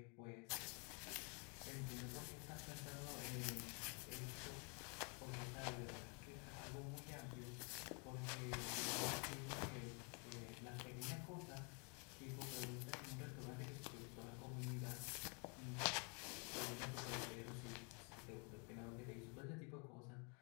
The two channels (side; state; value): right; quieter; 35.7 dB